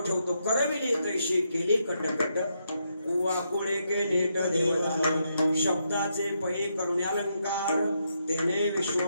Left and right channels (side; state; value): both; inverted; correlation -0.80